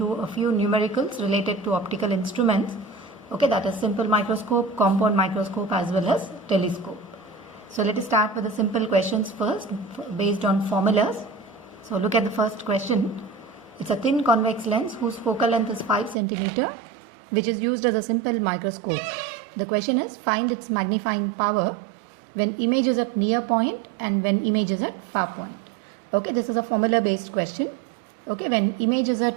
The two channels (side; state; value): left; drops out; at 16.2 s